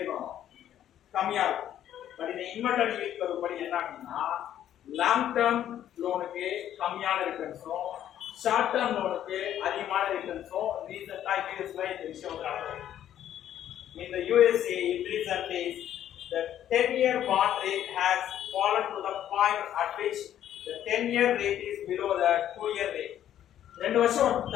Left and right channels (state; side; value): quieter; right; 11.1 dB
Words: கம்மியா இருக்கும். பட் இந்த இன்வெர்டட் yield curve படி என்ன அப்படின்னா லாங் டர்ம் லோனுக்கு கம்மியான ரிட்டர்ன்ஸும் ஷார்ட் டர்ம் லோனுக்கு அதிகமான ரிட்டர்ன்ஸும் ரீசெண்டா யூஎஸ்ல இந்த விஷயம் நடக்குது. In the USA in recent days the 10-year bond rate has fallen to the point at which the 10-year rate is below the 2-year rate. 2 வருஷம்